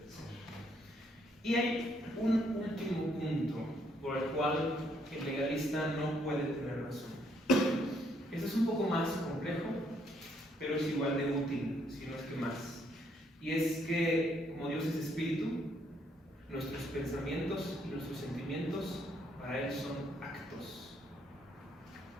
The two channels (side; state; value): both; normal; correlation 0.70